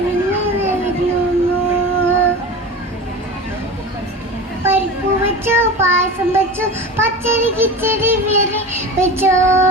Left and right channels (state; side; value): normal; both; correlation 0.31